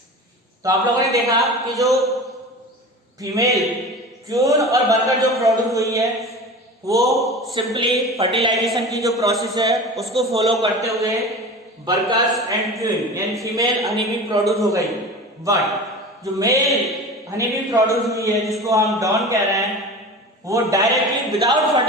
तो आप लोगों ने देखा कि जो फीमेल क्यून और वर्कर जो प्रोड्यूस हुई है वो सिंपली फर्टिलाइजेशन की जो प्रोसेस है उसको फॉलो करते हुए वर्कर्स एंड क्वीन यानी फीमेल हनी बी प्रोड्यूस हो गई। बट जो मेल हनी बी प्रोड्यूस हुई है जिसको हम डॉन कह रहे हैं वो डायरेक्टली विदाउट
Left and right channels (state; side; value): normal; both; correlation 0.33